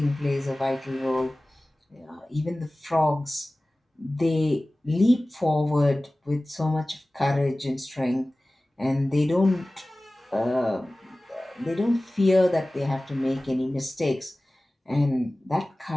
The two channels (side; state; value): both; normal; correlation 0.97